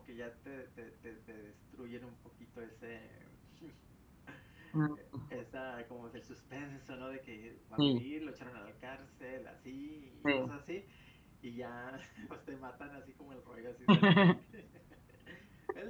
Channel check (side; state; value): both; identical; correlation 1.00